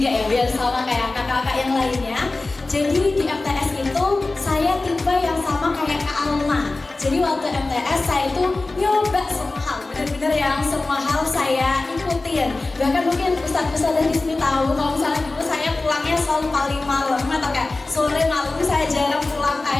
ya, biar sama kayak kakak-kakak yang lainnya. Jadi di MTS itu saya tipe yang sama kayak Kak Alma. Jadi waktu MTS saya itu nyoba semua hal, benar-benar yang semua hal saya ikutin. Bahkan mungkin ustadz-ustadz di sini tahu kalau misalnya dulu saya pulangnya selalu paling malam atau kayak sore malam, saya jarang pulang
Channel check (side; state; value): right; quieter; 3.2 dB